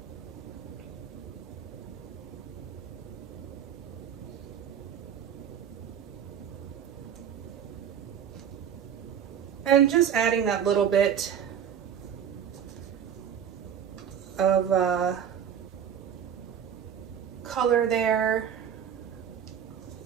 And just adding that little bit of color there.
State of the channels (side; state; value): left; quieter; 8.7 dB